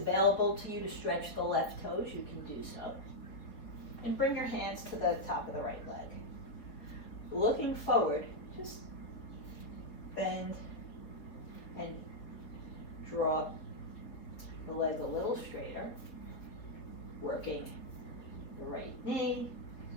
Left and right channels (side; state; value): right; late; 4.3 ms